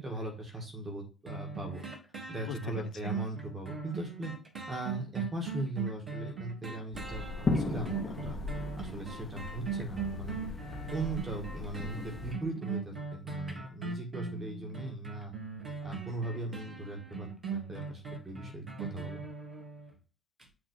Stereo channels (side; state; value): both; normal; correlation 0.40